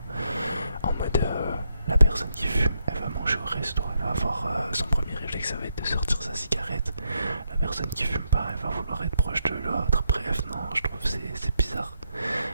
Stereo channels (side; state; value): both; inverted; correlation -0.79